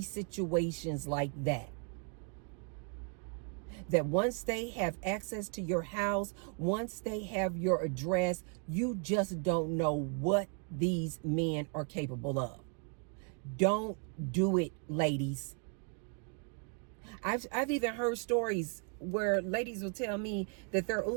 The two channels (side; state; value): left; quieter; 38.8 dB